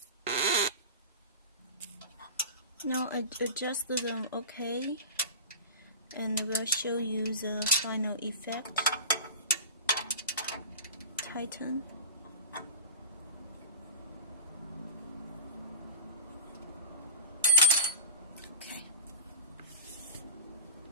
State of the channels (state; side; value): inverted; both; correlation -0.30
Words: Now I adjust them okay, and we'll show you the final effect. Tighten. Okay.